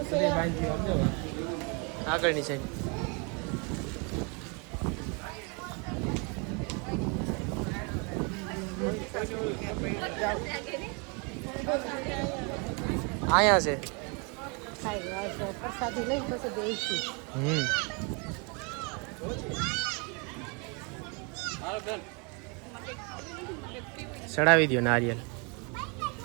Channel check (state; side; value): quieter; left; 33.1 dB